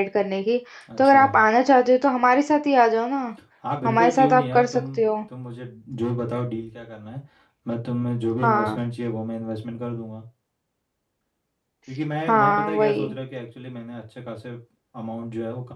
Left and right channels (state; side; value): identical; both; correlation 1.00